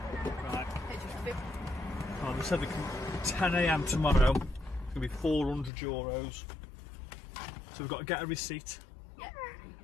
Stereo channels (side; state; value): right; drops out; at 5.7 s